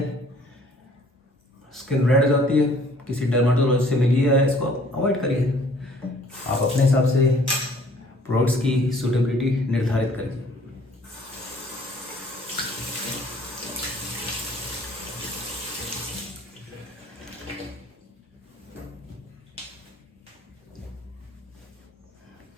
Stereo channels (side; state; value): both; normal; correlation 0.57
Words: स्किन रेड हो जाती है, किसी डर्माटोलॉजिस्ट से मिलिए, इसको अवॉइड करिए। आप अपने हिसाब से प्रोडक्ट्स की सूटेबिलिटी निर्धारित करिए।